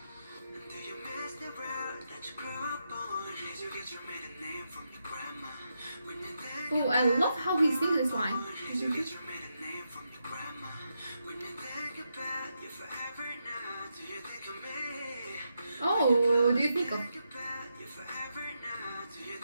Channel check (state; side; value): inverted; both; correlation -0.84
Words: Oh, I love how he sings this line. Oh, do you think of...